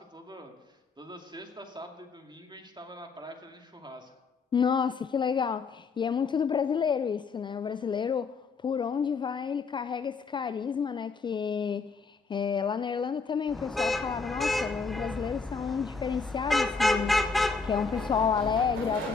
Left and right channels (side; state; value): right; quieter; 4.8 dB